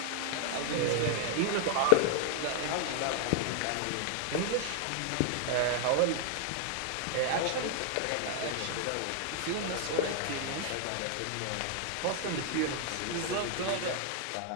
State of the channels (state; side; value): different; both; correlation 0.00